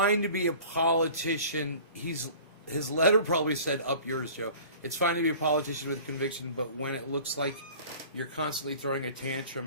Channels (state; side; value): inverted; both; correlation -0.44